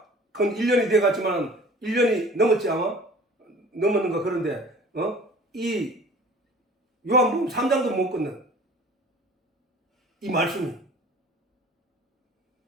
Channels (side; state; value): both; normal; correlation 0.46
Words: 건 1년이 돼 갔지만 1년이 넘었지 아마? 넘었는가. 그런데 이 요한복음 3장도 못 끊는 이 말씀이